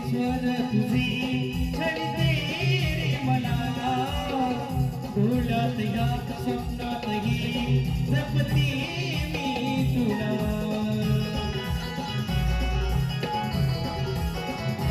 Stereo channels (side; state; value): both; identical; correlation 1.00